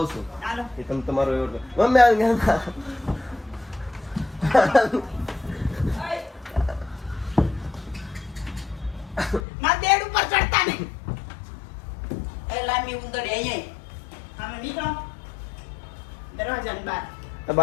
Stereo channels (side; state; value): right; drops out; at 9.5 s